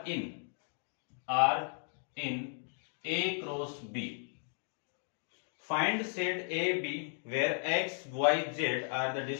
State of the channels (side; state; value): right; silent; 54 dB below the other